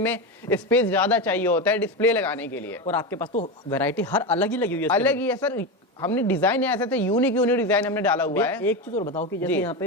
स्पेस ज्यादा चाहिए होता है डिस्प्ले लगाने के लिए। और आपके पास तो वैरायटी हर अलग ही लगी हुई है। अलग ही है सर, हमने डिजाइन ऐसे थे, यूनिक डिजाइन हमने डाला हुआ है। एक चीज और बताओ कि जैसे यहाँ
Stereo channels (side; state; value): both; normal; correlation 0.16